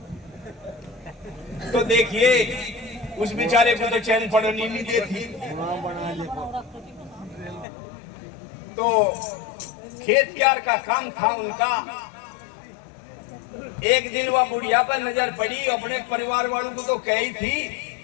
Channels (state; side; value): drops out; right; at 7.7 s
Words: तो देखिए उस बेचारे को तो चैन पड़नी नहीं देती। तो खेत क्यार का काम था उनका। एक दिन वह बुढ़िया पर नजर पड़ी, अपने परिवार वालों को तो कही थी,